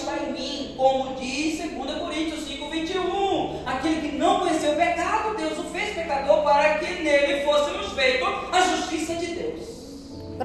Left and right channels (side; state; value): both; identical; correlation 1.00